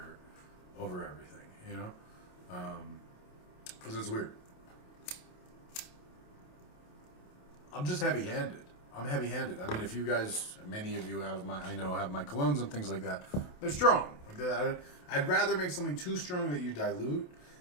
over everything, you know? Because it's weird. I'm just heavy-handed. I'm heavy-handed. I mean, if you guys, many of you have my colognes and things like that, they're strong. Like I'd rather make something too strong that you dilute,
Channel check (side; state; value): right; late; 28 ms